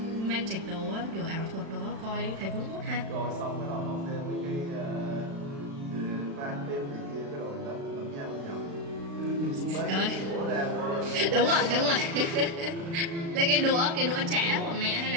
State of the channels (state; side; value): late; left; 36 ms